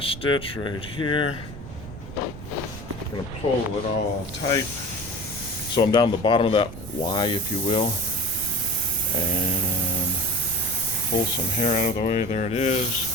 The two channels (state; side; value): noise; right; rumble, 12 dB below the sound